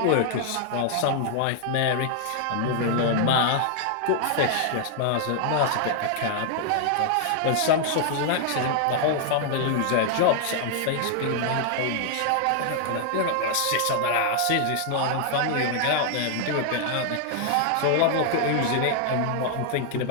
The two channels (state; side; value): different; both; correlation 0.00